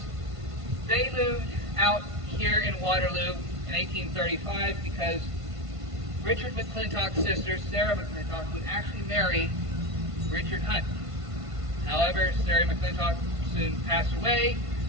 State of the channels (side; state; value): left; late; 1.5 ms